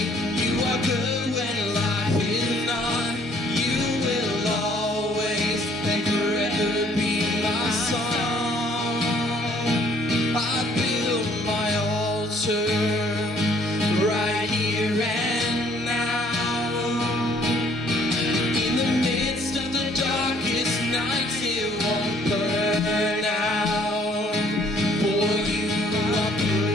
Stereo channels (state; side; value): normal; both; correlation 0.61